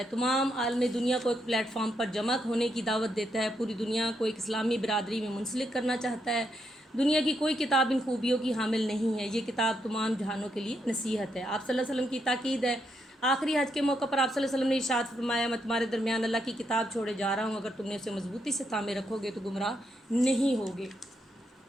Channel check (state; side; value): normal; both; correlation 0.79